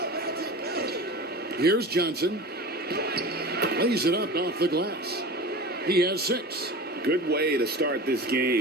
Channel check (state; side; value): normal; both; correlation 0.33